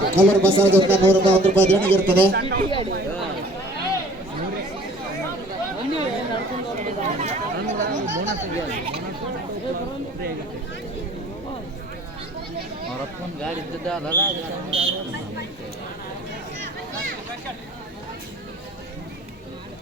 ಕಲ್ಲೂರು ಬಸವದಿಂದ 100 ರೂಪಾಯಿ ದೇಣಿಗೆ ಇರ್ತದೆ. ಗಾಡಿ ಇದ್ದದಲ್ಲ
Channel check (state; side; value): normal; both; correlation 0.50